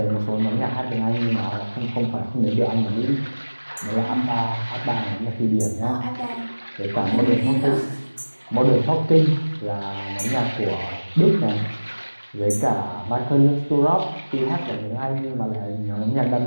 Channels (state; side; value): inverted; both; correlation -1.00